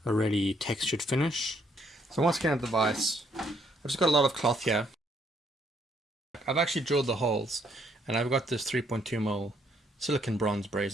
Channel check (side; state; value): both; normal; correlation 0.69